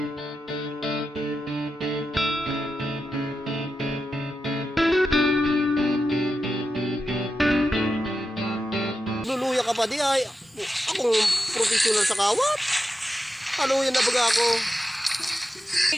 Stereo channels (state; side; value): normal; both; correlation 0.89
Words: Luluya ka pa di ay. Akong professional sa kawat. Haluyan na baga ako.